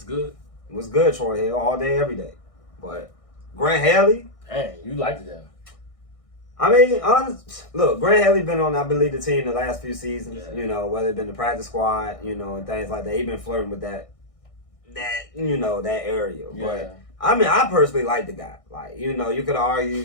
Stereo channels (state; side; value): late; right; 1.6 ms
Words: good? What's good, Troy Hill, all day, every day. But Grant Haley, hey, you liked that. Look, Grant Haley been on, I believe, the team the last few seasons, whether it been the practice squad, and things like that. He been flirting with that area. Yeah. But, I personally like the guy. You could